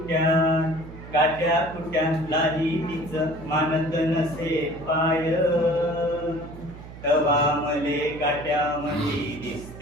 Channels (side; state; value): right; noise; hum, 15 dB below the sound